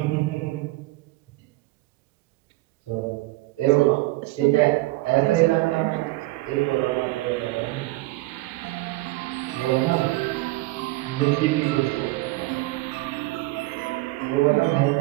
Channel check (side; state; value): left; quieter; 19.9 dB